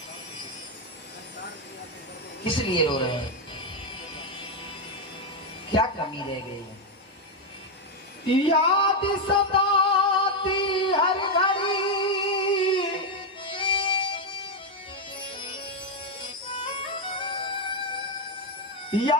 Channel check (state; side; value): normal; both; correlation 0.03